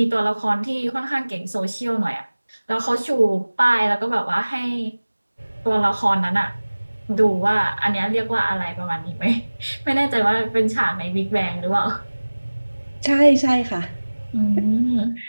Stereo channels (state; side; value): inverted; both; correlation -1.00